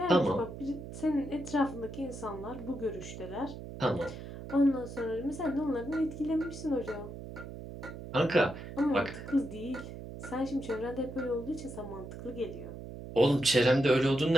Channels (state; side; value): noise; right; hum, 11 dB below the sound